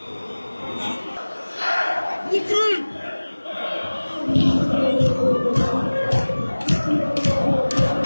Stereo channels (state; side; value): inverted; both; correlation -1.00